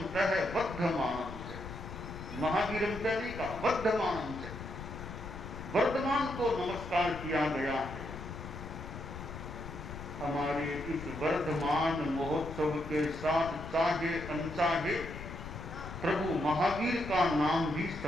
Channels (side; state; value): left; noise; rumble, 10 dB below the sound